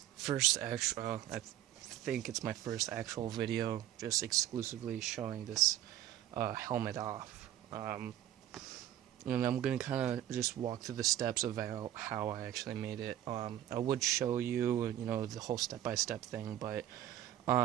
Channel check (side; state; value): left; quieter; 12.2 dB